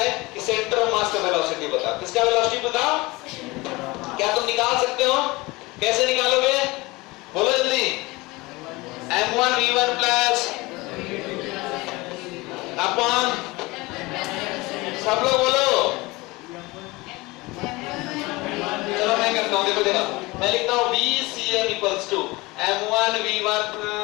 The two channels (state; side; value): quieter; right; 22.5 dB